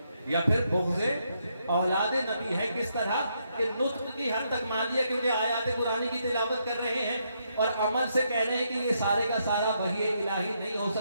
یا پھر بغض اولاد نبی ہے۔ کس طرح کہ نطق کی حد تک مان لیا کیونکہ آیات قرآنی کی تلاوت کر رہے ہیں اور عمل سے کہہ رہے ہیں کہ یہ سارے کا سارا وحی الہی نہیں ہو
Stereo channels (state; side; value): inverted; both; correlation -0.77